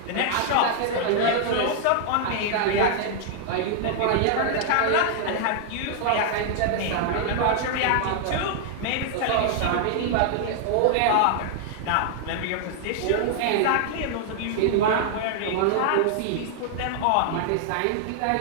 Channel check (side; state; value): both; different; correlation -0.01